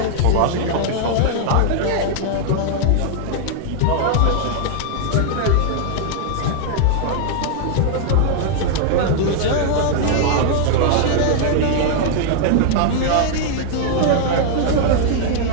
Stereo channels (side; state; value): both; different; correlation 0.00